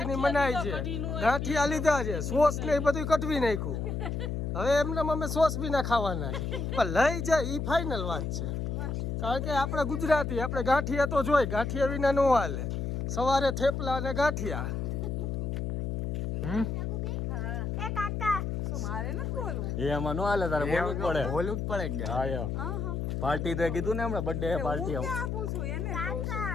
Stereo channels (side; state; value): left; noise; hum, 2 dB below the sound